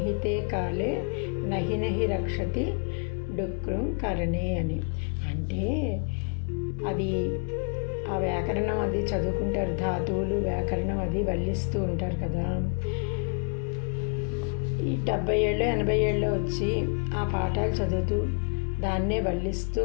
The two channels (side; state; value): right; quieter; 39.5 dB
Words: కాలే నహి నహి రక్షతి డుక్రం కరణే అని. అంటే అది ఆ వ్యాకరణం అది చదువుకుంటారు, ధాతువులు వ్యాకరణం అది వల్లిస్తూ ఉంటారు కదా. ఈ 70 ఏళ్ళు 80 ఏళ్ళు వచ్చి ఆ పాఠాలు చదువుతూ దాన్నే వల్లిస్తూ